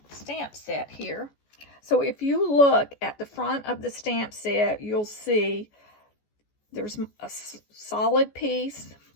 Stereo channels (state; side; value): late; right; 14 ms